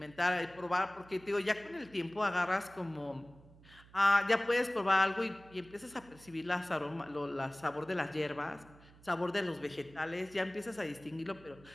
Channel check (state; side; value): noise; right; hum, 23 dB below the sound